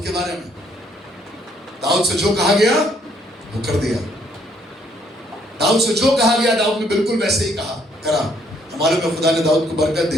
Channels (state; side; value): normal; both; correlation 0.67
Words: के बारे में, दाऊद से जो कहा गया वो कर दिया। दाऊद से जो कहा गया दाऊद ने बिल्कुल वैसे ही करा। हमारे में खुदा ने दाऊद को बरकत